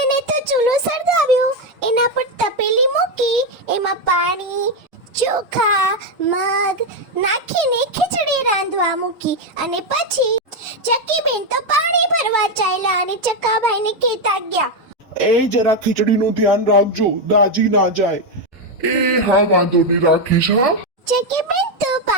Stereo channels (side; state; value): both; normal; correlation 0.06